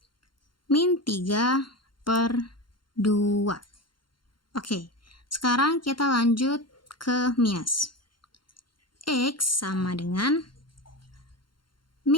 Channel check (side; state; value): right; late; 0.72 ms